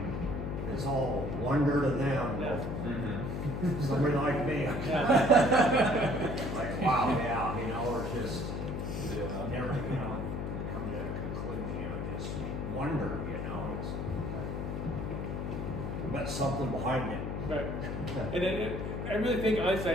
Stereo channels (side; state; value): left; noise; hum, 3 dB below the sound